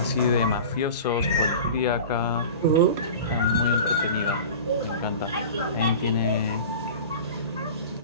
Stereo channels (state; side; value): inverted; both; correlation -0.36